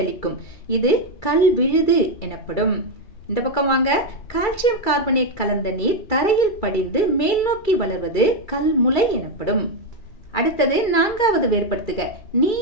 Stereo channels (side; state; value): right; late; 2.3 ms